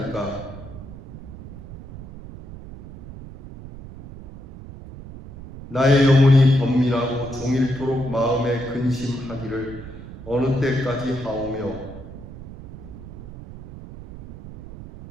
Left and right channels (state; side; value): noise; right; rumble, 14 dB below the sound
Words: 나의 영혼이 번민하고 종일토록 마음에 근심하기를 어느 때까지 하오며